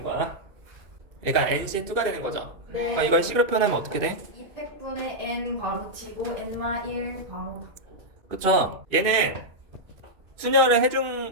거야. 그러니까 NC2가 되는 거죠. 네. 이걸 C로 표현하면 어떻게 돼? 200분의 n 괄호 치고 n-1 괄호 닫고. 그쵸? 얘는 순열을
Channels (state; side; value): late; left; 2.5 ms